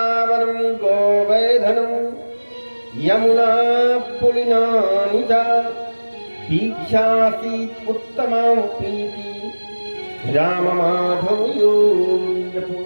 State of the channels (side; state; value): both; inverted; correlation -1.00